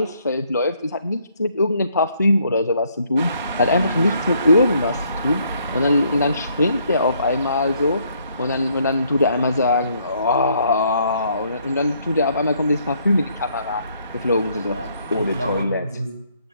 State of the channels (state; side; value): inverted; both; correlation -0.68